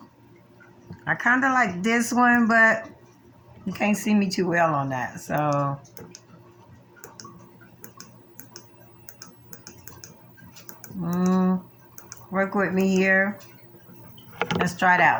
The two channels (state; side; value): identical; both; correlation 1.00